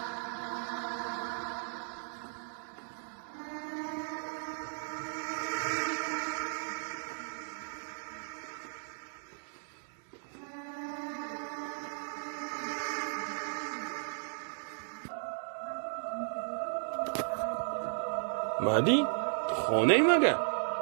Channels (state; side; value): silent; left; digital silence